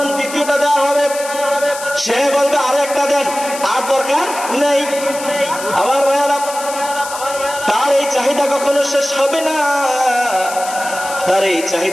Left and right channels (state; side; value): noise; left; hiss, 11 dB below the sound